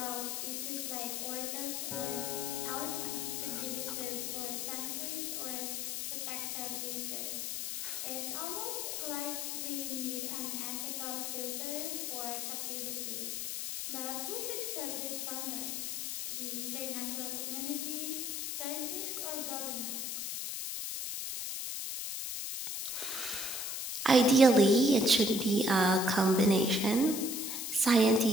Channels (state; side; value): noise; left; hiss, 3 dB below the sound